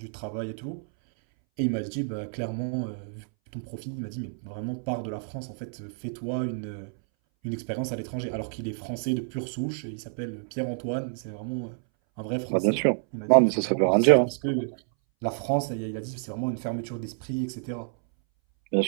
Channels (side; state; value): left; silent; 59 dB below the other